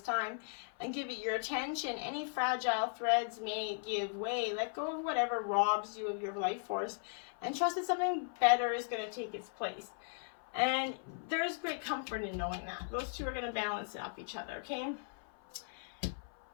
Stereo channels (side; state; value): right; silent; 53 dB below the other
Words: and give it your attention. Any fragile threads may give way. Let go of whatever robs you of your life force and trust that something better is going to take its place. And there's great comfort in knowing that. Those two are going to balance off each other, okay?